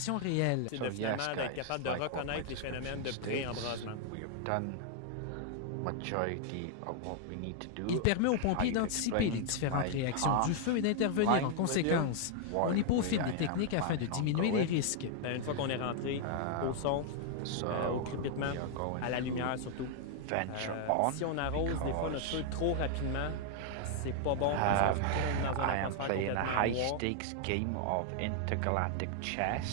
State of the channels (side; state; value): both; different; correlation 0.00